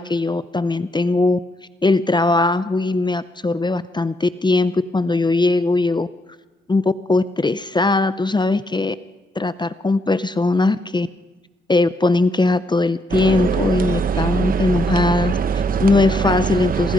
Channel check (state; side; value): normal; both; correlation 0.75